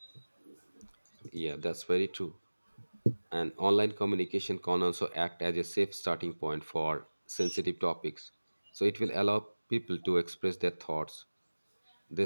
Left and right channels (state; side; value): inverted; both; correlation -1.00